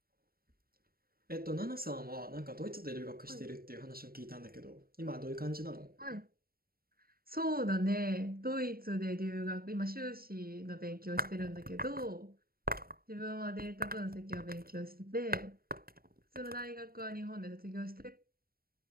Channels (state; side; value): late; left; 0.44 ms